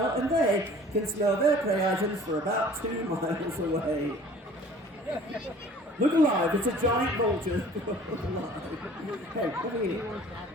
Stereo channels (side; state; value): both; normal; correlation 0.49